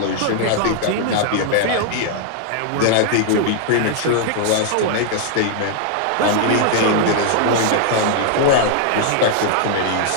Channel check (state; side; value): different; both; correlation 0.00